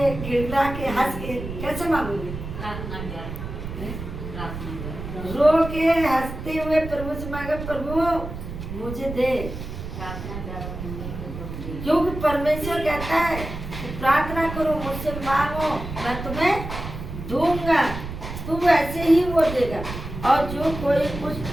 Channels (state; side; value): noise; right; rumble, 8 dB below the sound